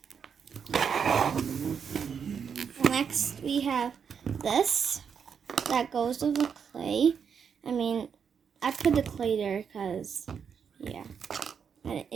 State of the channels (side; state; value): left; quieter; 7.0 dB